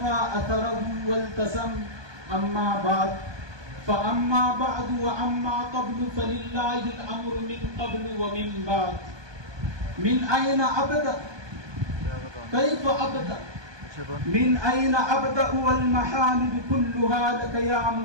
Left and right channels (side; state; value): left; late; 1.2 ms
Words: أثره والتزم. أما بعد فأما بعد وأما قبل فلله الأمر من قبل ومن بعد. من أين أبدأ؟ كيف أبدأ؟ من أين أبدأ والمحامد كلها لك يا